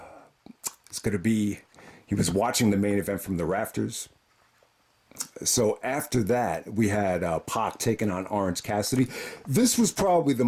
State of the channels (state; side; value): identical; both; correlation 1.00